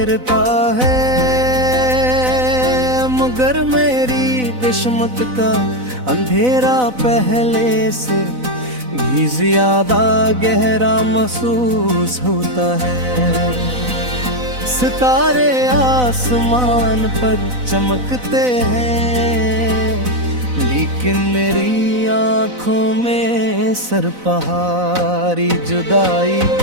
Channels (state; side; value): late; left; 4.0 ms